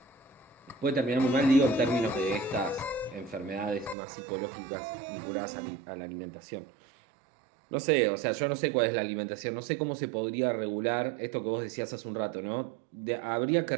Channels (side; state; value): left; drops out; at 4.0 s